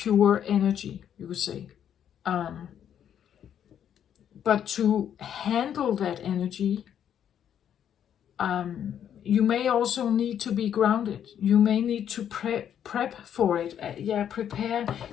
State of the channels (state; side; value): quieter; right; 9.4 dB